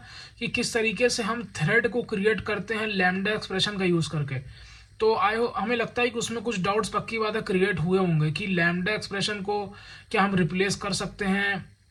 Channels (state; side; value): identical; both; correlation 1.00